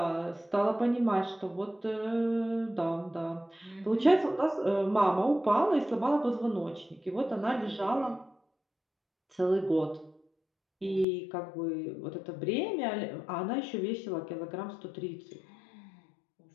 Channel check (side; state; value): right; drops out; at 11.1 s